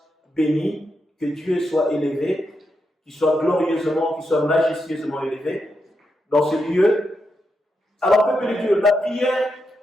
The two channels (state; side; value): normal; both; correlation 0.84